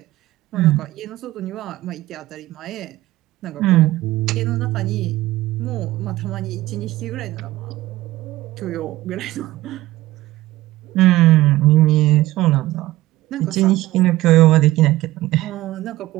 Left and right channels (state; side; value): quieter; left; 16.7 dB